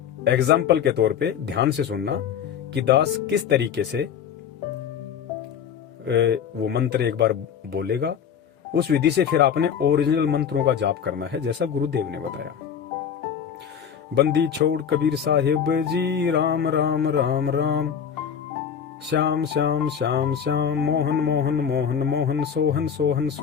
एग्जाम्पल के तौर पे ध्यान से सुनना कि दास किस तरीके से वो मंत्र एक बार बोलेगा, उस विधि से फिर आपने ओरिजिनल मंत्रों का जाप करना है जैसा गुरुदेव ने बताया। बंदी छोड़ कबीर साहिब जी, राम राम राम राम, श्याम श्याम श्याम श्याम, मोहन मोहन मोहन मोहन, सोहन सोहन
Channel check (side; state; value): right; quieter; 7.9 dB